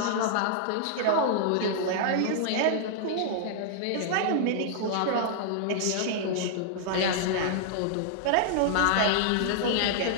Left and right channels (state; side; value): different; both; correlation -0.01